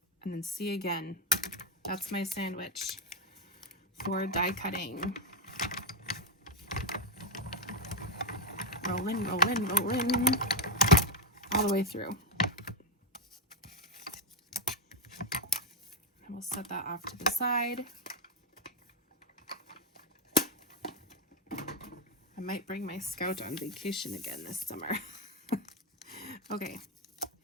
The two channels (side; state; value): both; normal; correlation 0.09